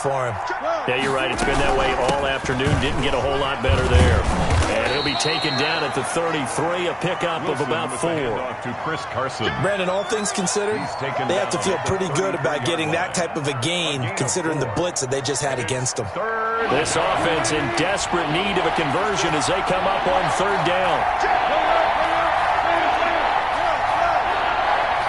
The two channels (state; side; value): identical; both; correlation 1.00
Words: him. Yeah, you're right. It's been that way all afternoon. Didn't get a whole lot better there. And he'll be taken down at the 33, a pickup of about 4. To Chris Carson. Brandon, all things considered, they have to feel pretty good about getting that type of a gain, considering the blitz that they just had against them. This offense in desperate need of a conversion as they come up on 3rd down.